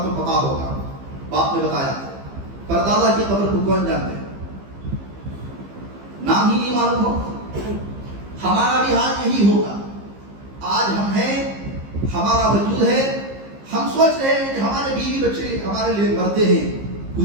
تو پتا ہوگا، باپ نے بتایا، پر دادا کی قبر کو کون جانتے ہیں؟ نام ہی نہیں معلوم ہو۔ ہمارا بھی حال یہی ہوگا، آج ہم ہیں، ہمارا وجود ہے، ہم سوچ رہے ہیں کہ ہمارے بیوی بچے ہمارے لیے مرتے ہیں،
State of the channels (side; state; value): left; late; 15 ms